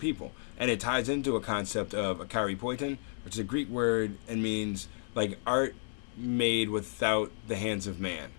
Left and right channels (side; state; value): right; silent; 56 dB below the other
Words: And it ties into a concept of akaripoiton, which is a Greek word and means like art made without the hands of man,